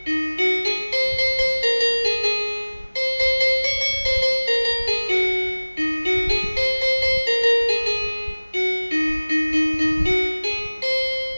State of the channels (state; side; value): inverted; both; correlation -1.00